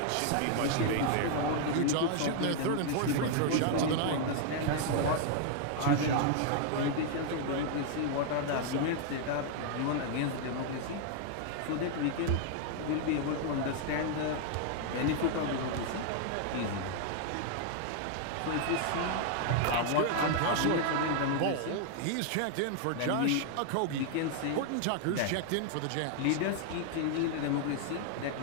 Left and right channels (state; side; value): different; both; correlation 0.00